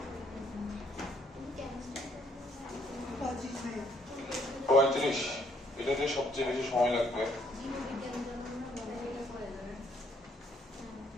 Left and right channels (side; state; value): both; normal; correlation 0.67